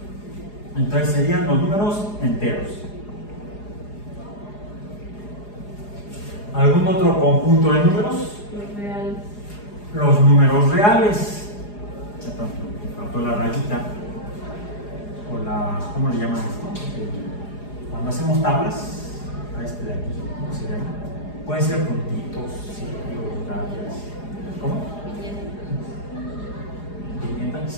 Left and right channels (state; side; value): late; right; 4.8 ms